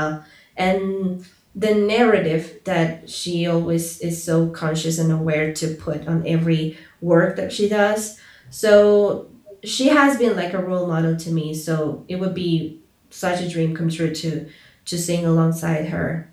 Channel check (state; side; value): identical; both; correlation 1.00